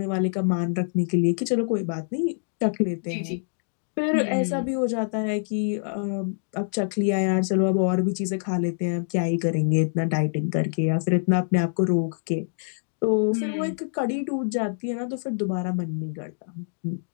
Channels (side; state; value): right; silent; digital silence